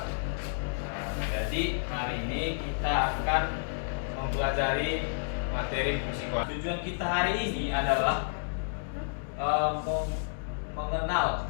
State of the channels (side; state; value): right; silent; digital silence